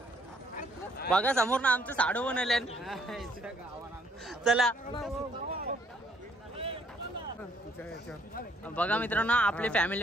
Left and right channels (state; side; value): normal; both; correlation 0.67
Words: बघा समोर ना आमचं साडू बनवले. चला बघा मित्रांनो आपले